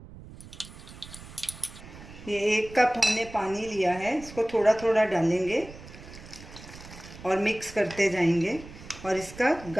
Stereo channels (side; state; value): right; noise; rumble, 16 dB below the sound